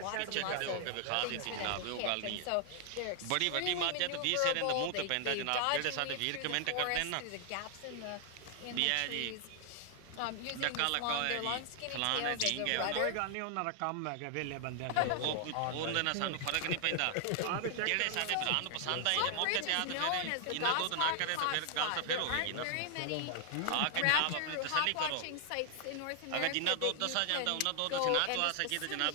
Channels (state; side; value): different; both; correlation 0.00